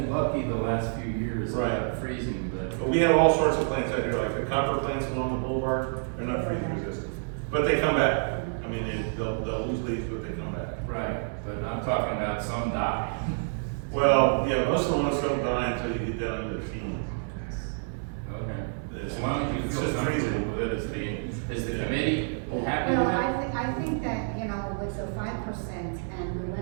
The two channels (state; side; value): silent; left; 59 dB below the other